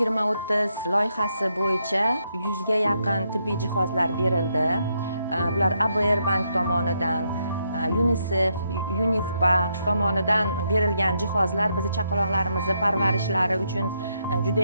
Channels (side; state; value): both; inverted; correlation -0.78